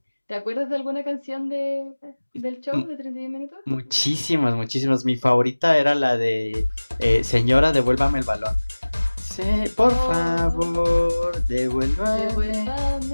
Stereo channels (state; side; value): inverted; both; correlation -1.00